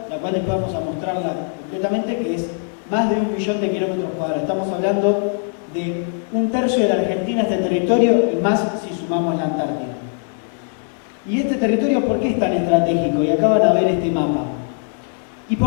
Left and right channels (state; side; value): silent; right; 63 dB below the other